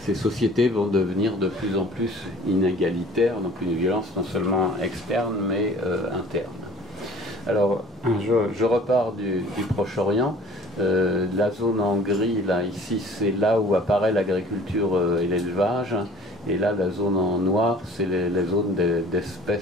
ces sociétés vont devenir de plus en plus inégalitaires, donc une violence non seulement externe, mais interne. Alors, je repars du Proche-Orient. La zone en gris, là, ici, c'est là où apparaît l'agriculture et l'élevage. Et là, la zone en noir, c'est les zones des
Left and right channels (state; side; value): normal; both; correlation 0.49